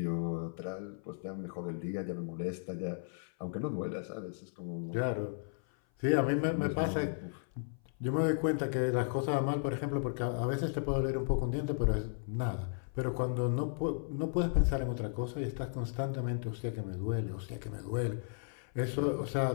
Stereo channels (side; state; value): right; silent; 55 dB below the other